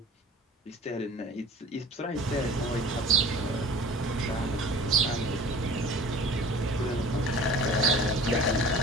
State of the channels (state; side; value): normal; both; correlation 0.44